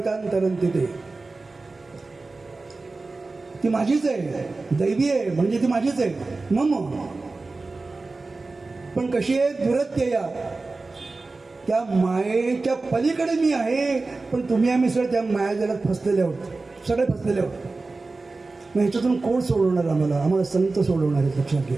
ते. ती माझीच आहे, दैवी आहे म्हणजे ती माझीच आहे मम. पण कशी आहे? दुरत्यया, त्या मायेच्या पलीकडे मी आहे. पण तुम्ही आम्ही सगळे त्या मायाजालात फसलेले आहोत, सगळे फसलेले आहोत. मग ह्याच्यातून कोण सोडवणार आम्हाला? आम्हाला संत सोडवणार आहेत, लक्षात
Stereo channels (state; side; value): quieter; left; 3.6 dB